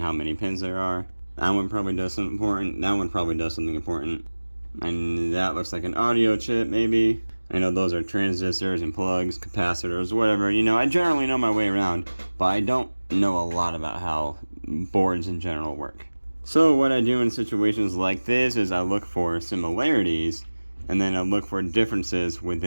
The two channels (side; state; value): both; inverted; correlation -1.00